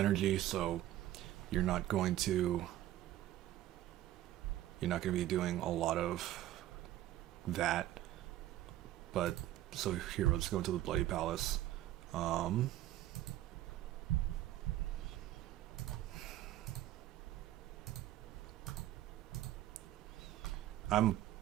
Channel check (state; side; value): quieter; left; 13.9 dB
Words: so you're not going to be doing a lot of that. But so here, let's go to the Bloody Palace. I'm